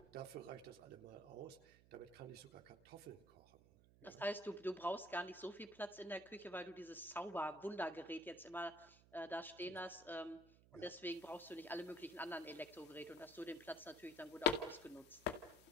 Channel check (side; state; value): right; noise; hum, 23 dB below the sound